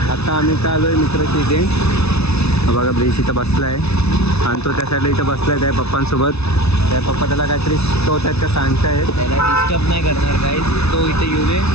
आता आम्ही इथं आलो आहे मित्राची इथे. बघा ब्रिज इथं बसला आहे आणि तो त्या साईडला इथं बसला आहे त्या पप्पांसोबत. त्या पप्पा त्याला काहीतरी शिकवत का सांगतायत. त्याला डिस्टर्ब नाही करणार काही. तो इथे येऊ दे,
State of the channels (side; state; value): right; late; 0.80 ms